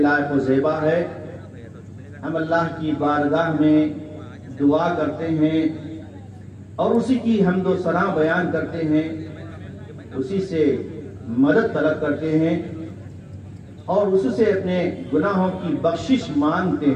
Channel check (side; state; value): both; identical; correlation 1.00